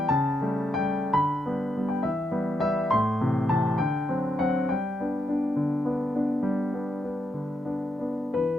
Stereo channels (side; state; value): both; normal; correlation 0.82